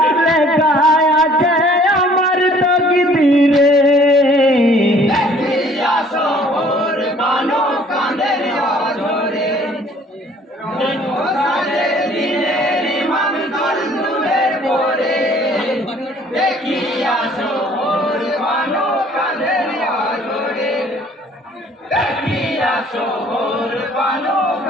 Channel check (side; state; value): both; normal; correlation 0.56